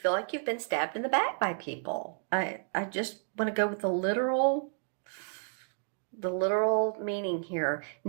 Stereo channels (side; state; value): left; silent; digital silence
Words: like you've been stabbed in the back by people. I just want to go with the literal meaning here.